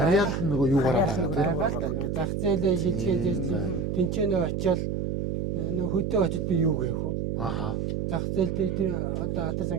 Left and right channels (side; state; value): right; noise; hum, 1 dB below the sound